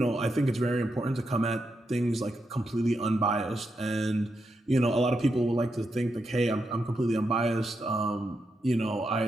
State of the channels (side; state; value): both; normal; correlation 0.84